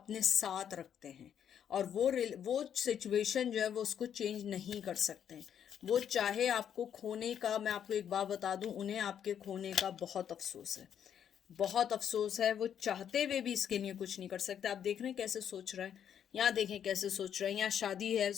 साथ रखते हैं, और वो सिचुएशन जो है वो उसको चेंज नहीं कर सकते हैं। वो चाहे आपको खोने का, मैं आपको एक बात बता दूं, उन्हें आपके खोने का बहुत अफसोस है, बहुत अफसोस है। वो चाहते हुए भी इसके लिए कुछ नहीं कर सकते। आप देख रहे हैं कैसे सोच रहा है, यहाँ देखें कैसे सोच रहा है, यहाँ शादी है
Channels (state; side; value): quieter; right; 8.9 dB